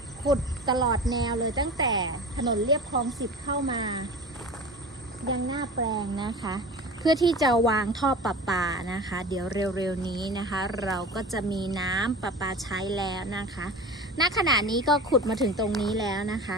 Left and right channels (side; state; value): both; normal; correlation 0.35